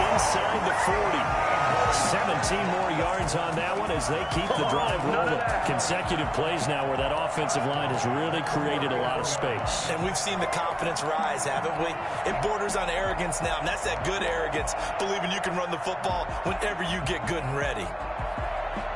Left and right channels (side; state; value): both; identical; correlation 1.00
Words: the 40. 17 more yards on that one as they keep the drive rolling. Consecutive plays now where that offensive line has really created a lot of space. And we've seen the confidence rise, haven't we? It borders on arrogance now, and that's that good arrogance, believing you can run the football whenever you get good and ready.